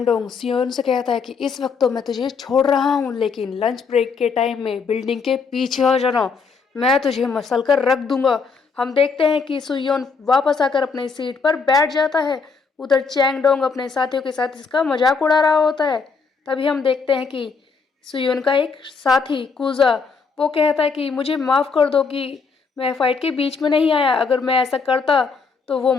सियोन से कहता है कि इस वक्त तो मैं तुझे छोड़ रहा हूँ, लेकिन लंच ब्रेक के टाइम में बिल्डिंग के पीछे आ जाना, मैं तुझे मसल कर रख दूंगा। हम देखते हैं कि सुयोन वापस आकर अपने सीट पर बैठ जाता है। उधर चैंगडोंग अपने साथियों के साथ इसका मजाक उड़ा रहा होता है। तभी हम देखते हैं कि सुयोन का एक साथी कुजा वो कहता है कि मुझे माफ़ कर दो कि मैं फाइट के बीच में नहीं आया, अगर मैं ऐसा करता तो वो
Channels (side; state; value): right; quieter; 5.1 dB